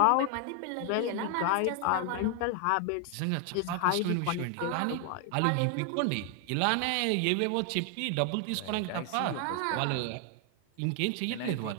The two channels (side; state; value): both; different; correlation 0.00